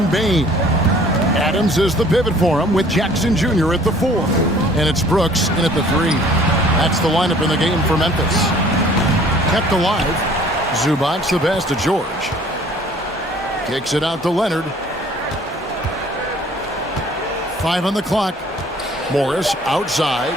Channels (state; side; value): normal; both; correlation 0.54